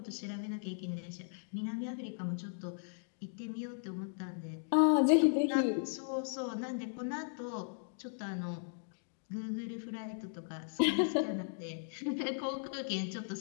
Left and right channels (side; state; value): right; silent; digital silence